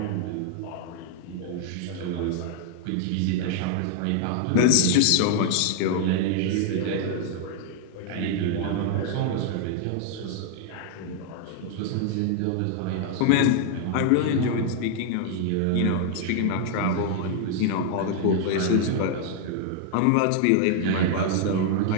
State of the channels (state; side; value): different; both; correlation 0.00